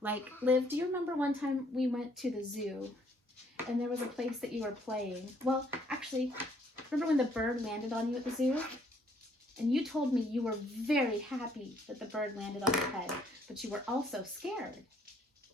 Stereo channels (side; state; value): both; normal; correlation 0.65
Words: Like, Liv, do you remember one time we went to the zoo and there was a place that you were playing? Well, actually, remember when the bird landed on you at the zoo? And you told me you were very happy that the bird landed on your head, but you were also scared.